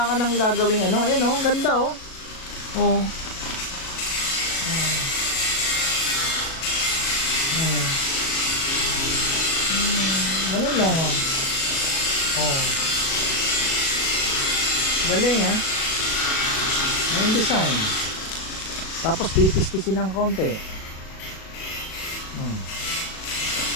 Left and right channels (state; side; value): late; right; 37 ms